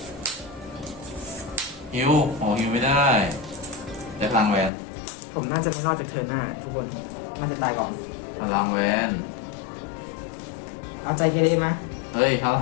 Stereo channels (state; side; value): drops out; right; at 4.7 s